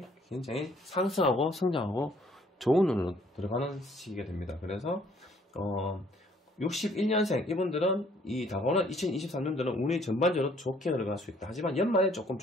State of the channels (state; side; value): normal; both; correlation 0.62